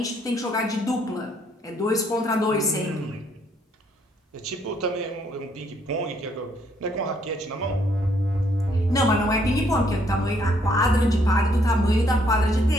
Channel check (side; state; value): both; normal; correlation 0.69